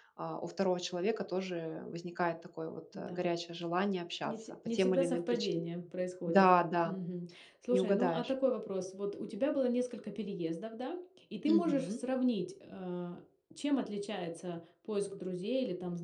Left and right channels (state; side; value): identical; both; correlation 1.00